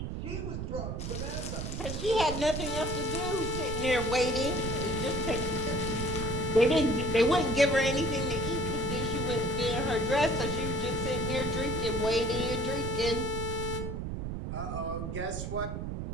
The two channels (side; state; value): right; noise; rumble, 4 dB below the sound